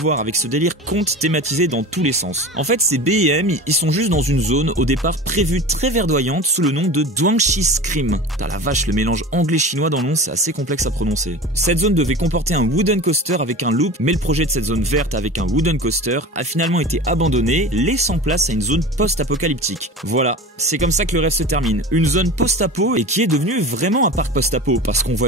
avec ce délire conte thématisé dans tous les sens. En fait, ces BM, ils sont juste dans une zone au départ prévue très verdoyante sous le nom de Duangxi Scream. T'as la vache, le mélange anglais-chinois dans le nom, c'est assez complexe à prononcer. Cette zone devait comporter un wooden coaster avec un loop, mais le projet de cette zone verte avec un wooden coaster a finalement été abandonné, laissant place à une zone post-apocalyptique. Voilà, c'est comme ça que le rêve se termine. Une zone post-apo et qui est devenue vraiment un parc post-apo parce qu'on voit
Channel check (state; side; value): normal; both; correlation 0.33